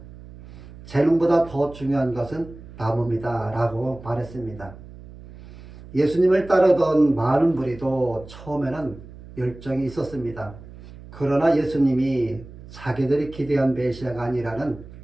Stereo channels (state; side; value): noise; right; hum, 17 dB below the sound